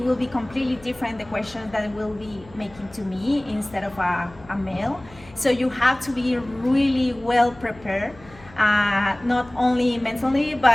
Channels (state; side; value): noise; left; hum, 23 dB below the sound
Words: will be completely different, the questions that it will be making to me instead of a male. So you have to be really well prepared. Not only mentally,